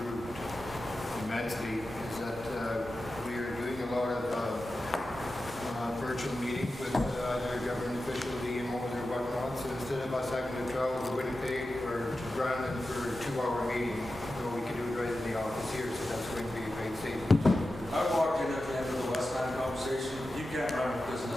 immensely is that we are doing a lot of virtual meetings with either government officials, EMOs or whatnot. So instead of us having to travel to Winnipeg or to Brandon for a 2-hour meeting, we can do it right in the office here. So that's going to be a great savings. I walked in at the end of the Westland conversation. You can't run a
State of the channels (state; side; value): normal; both; correlation 0.92